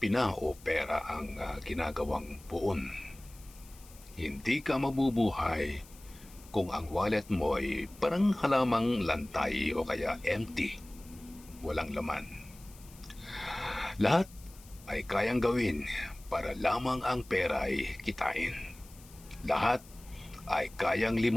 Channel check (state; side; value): noise; left; hiss, 22 dB below the sound